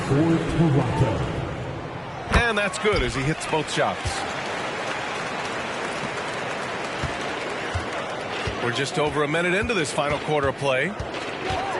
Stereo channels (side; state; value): both; identical; correlation 1.00